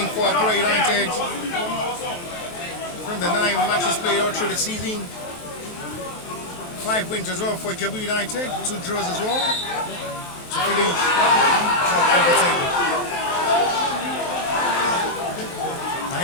for Akure United from the 9 matches played all through the season. 5 wins as well for Ijebu United, 2 draws as well to finish top of the table.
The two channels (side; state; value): right; late; 23 ms